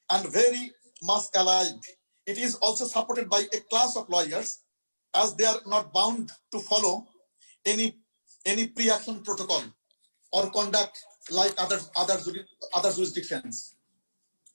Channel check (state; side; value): inverted; both; correlation -1.00